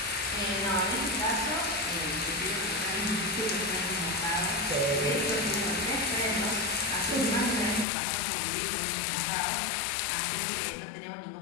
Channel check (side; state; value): right; drops out; at 7.9 s